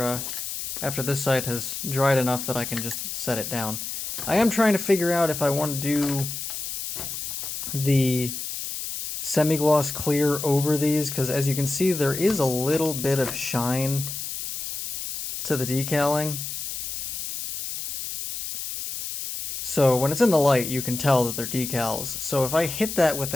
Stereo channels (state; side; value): noise; left; hiss, 6 dB below the sound